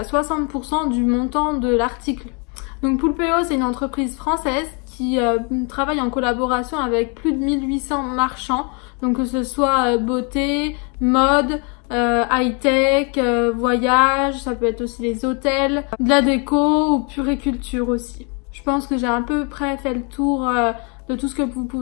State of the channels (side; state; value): right; quieter; 34.7 dB